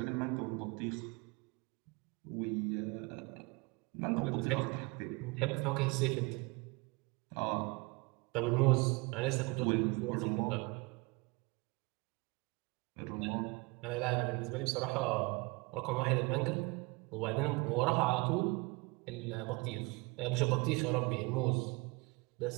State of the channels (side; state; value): left; quieter; 27.0 dB